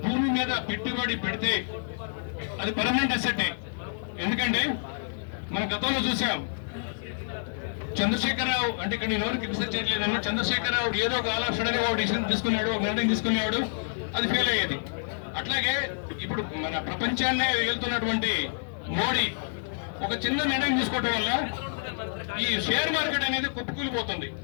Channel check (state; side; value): silent; right; 59 dB below the other